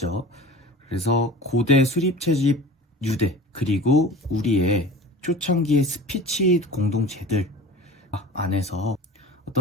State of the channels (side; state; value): both; normal; correlation 0.38